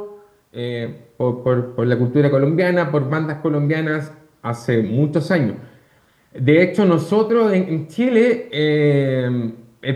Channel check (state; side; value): identical; both; correlation 1.00